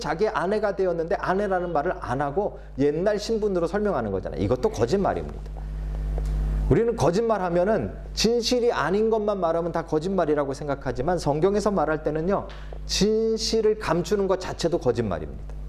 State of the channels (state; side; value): identical; both; correlation 1.00